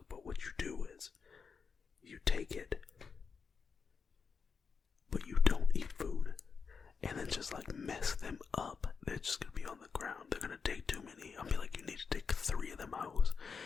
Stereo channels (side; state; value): right; quieter; 5.6 dB